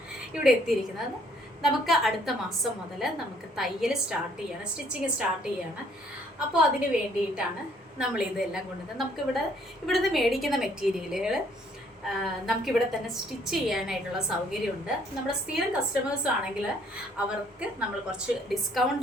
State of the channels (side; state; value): both; normal; correlation 0.64